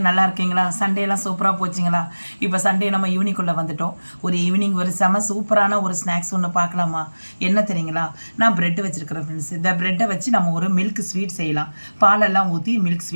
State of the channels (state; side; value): inverted; both; correlation -1.00